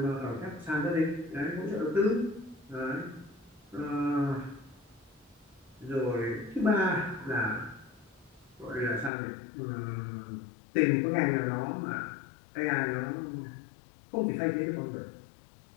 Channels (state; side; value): drops out; right; at 9.1 s